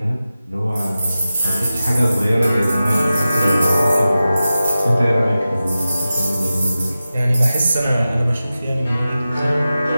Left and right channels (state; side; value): inverted; both; correlation -0.94